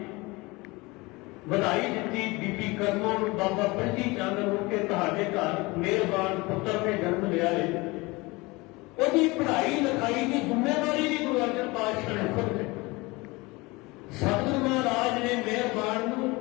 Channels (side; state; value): right; quieter; 23.6 dB